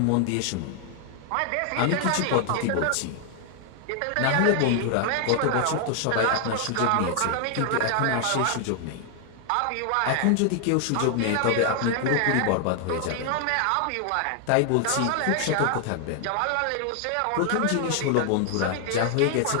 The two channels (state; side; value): different; both; correlation 0.00